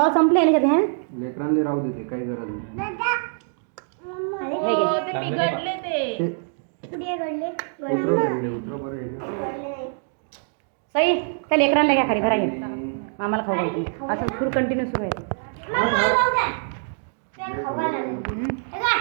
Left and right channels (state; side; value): silent; left; digital silence